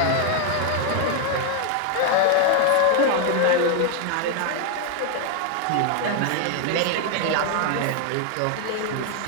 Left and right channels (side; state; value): both; different; correlation 0.01